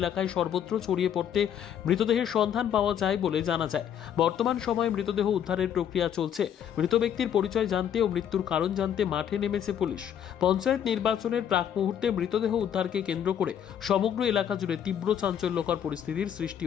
সর্বত্র ছড়িয়ে পড়তে মৃতদেহের সন্ধান পাওয়া যায় বলে জানা যায়। বর্তমান সময়ে মৃতদেহ উদ্ধারের প্রক্রিয়া চলছে। মৃত ব্যক্তির পরিচয় জানতে ও মৃত্যুর কারণ জানতে মাঠে নেমেছে পুলিশ। পঞ্চায়েত নির্বাচনের প্রাক মুহূর্তে মৃতদেহ উদ্ধারকে কেন্দ্র করে সমগ্র এলাকা জুড়ে তীব্র চাঞ্চল্যকর পরিস্থিতির সৃষ্টি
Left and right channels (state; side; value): quieter; right; 9.3 dB